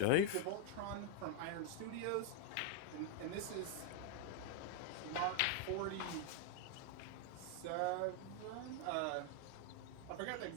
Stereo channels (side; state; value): both; different; correlation 0.00